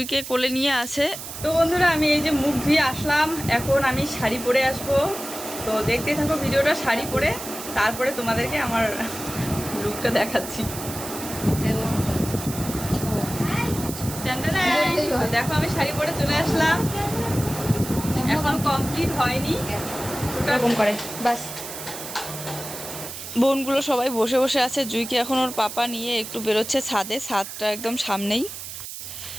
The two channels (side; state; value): right; noise; hiss, 10 dB below the sound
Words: কোলে নিয়ে আসে। তো বন্ধুরা, আমি এই যে মুখ ধুয়ে আসলাম, এখন আমি শাড়ি পরে আসবো। তো দেখতে থাকো ভিডিওটা শাড়ি পরে, তারপরে তোমাদেরকে আমার লুকটা দেখাচ্ছি। দেখো আমি শাড়ি পরে চলে আসলাম, এখন কমপ্লিট হয়নি এরকম করে বাস। বোনগুলো সবাই বসে বসে আছে, জুইকে এখন ওর পাপা নিয়ে একটু বেরোচ্ছে ছাদে, ছাদটা একদম সামনেই।